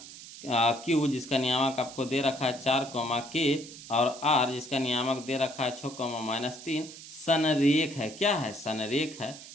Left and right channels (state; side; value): noise; right; hiss, 15 dB below the sound